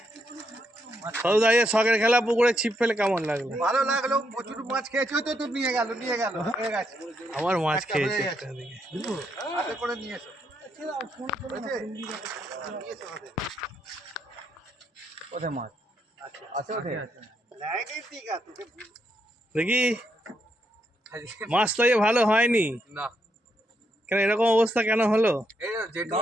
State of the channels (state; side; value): normal; both; correlation 0.78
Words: সদু দাঁড়িয়ে শখের খেলা পুকুরে ছিপ ফেলে কেমন লাগলো? ভালো লাগলো, প্রচুর মাছ খেয়েছো তো, তো নিয়ে গেল হয়ে গেছে। আমার মাছ খেয়েছে হাতে করে নিয়ে এসো। কোথায় মাছ আছে? দেখি মাছ তো ভালো হয়নি না, কেন, এরকম অবস্থা কেন হলো? যেটু